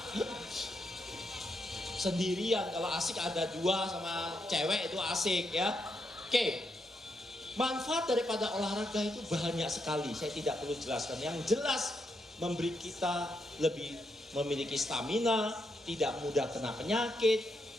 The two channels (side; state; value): both; normal; correlation 0.81